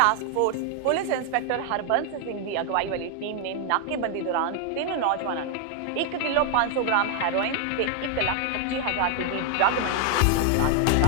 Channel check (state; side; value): different; both; correlation 0.00